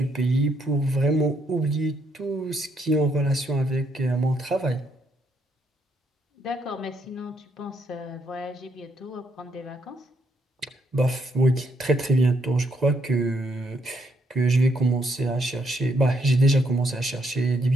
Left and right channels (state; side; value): normal; both; correlation 0.74